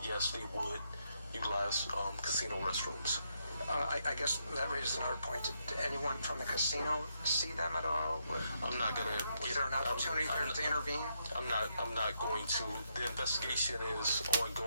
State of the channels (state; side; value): inverted; both; correlation -0.79